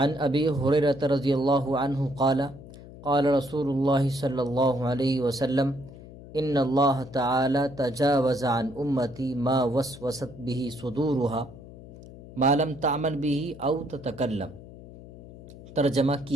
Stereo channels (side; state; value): left; noise; hum, 17 dB below the sound